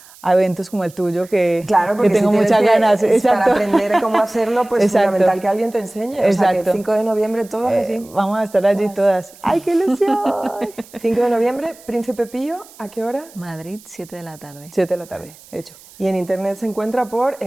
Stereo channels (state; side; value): noise; right; hiss, 23 dB below the sound